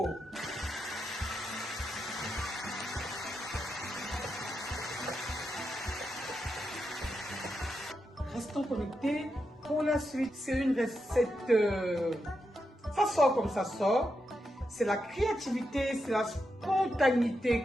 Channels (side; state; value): both; normal; correlation 0.86